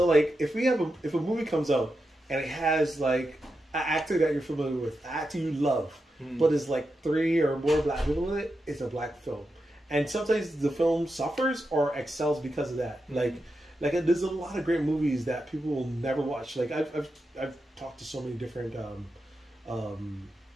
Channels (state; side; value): normal; both; correlation 0.88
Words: like if a movie comes out and it has like an actor that you're familiar with, an actor you love, but it's like 3 or more black people in it, it's a black film. And sometimes the film suffers or excels because of that. Like there's a lot of great movies that people will never watch. Like I've talked to so many different